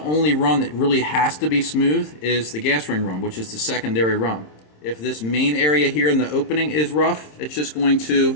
run that really has to be smooth is the gas ring run, which is the secondary run. If this main area here in the opening is rough, it's just going to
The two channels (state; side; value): late; right; 27 ms